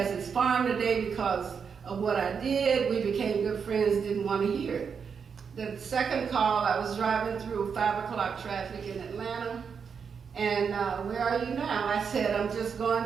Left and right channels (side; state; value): left; quieter; 6.4 dB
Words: his farm today because of what I did. We became good friends, didn't want to hear it. The second call, I was driving through 5 o'clock traffic in Atlanta. And where are you now? I said, I'm just